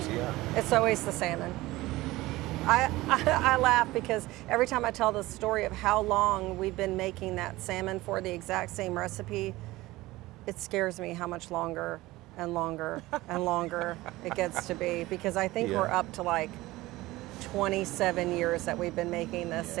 it's always the salmon. I laugh because every time I tell the story of how long we've been making that salmon for the exact same recipe, it scares me how much longer and longer and longer it gets to be, because I think we're up to like 27 years that we've been making this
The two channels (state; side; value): quieter; left; 18.7 dB